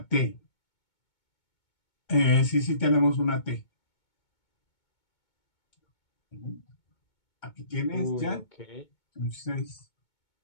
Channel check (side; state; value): right; late; 2.2 ms